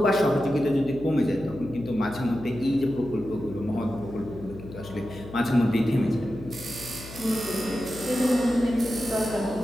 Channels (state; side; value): noise; left; hum, 14 dB below the sound